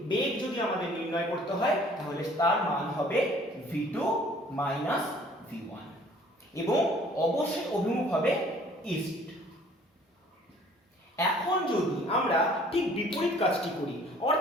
বেগ যদি আমাদের নির্ণয় করতে হয় তাহলে তার মান হবে v2 v1 এবং অবশ্যই অভিমুখ হবে ইস্ট। এখন যদি আমরা ঠিক বিপরীত কাজটি করি,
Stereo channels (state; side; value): normal; both; correlation 0.55